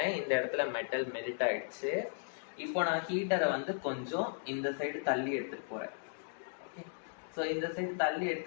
இந்த இடத்துல மெட்டல் மெல்ட் ஆயிடுச்சு. இப்போ நான் ஹீட்டரை வந்து கொஞ்சம் இந்த சைடு தள்ளி எடுத்துட்டு போறேன். ஓகே, ஸோ இந்த சைடு தள்ளி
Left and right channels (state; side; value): silent; right; digital silence